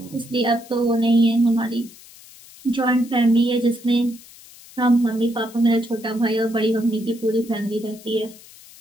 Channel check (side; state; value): left; noise; hiss, 21 dB below the sound